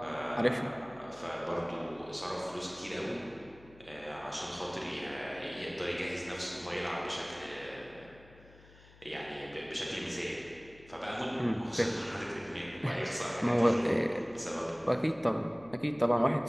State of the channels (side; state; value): left; noise; hum, 23 dB below the sound